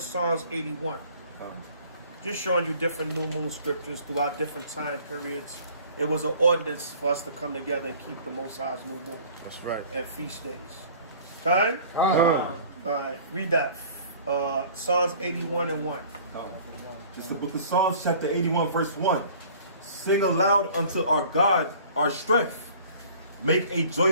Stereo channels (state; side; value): inverted; both; correlation -0.49